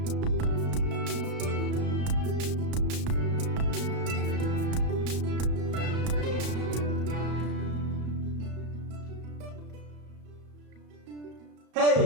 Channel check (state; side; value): late; left; 34 ms